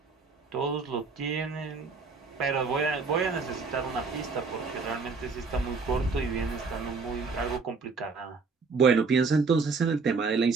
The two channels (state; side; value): quieter; left; 4.6 dB